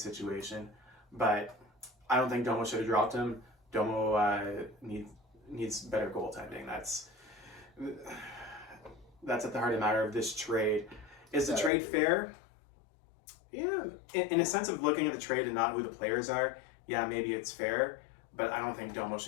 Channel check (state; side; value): drops out; right; at 11.7 s